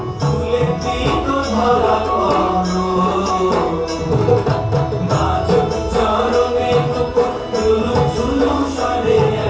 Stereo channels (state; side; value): identical; both; correlation 1.00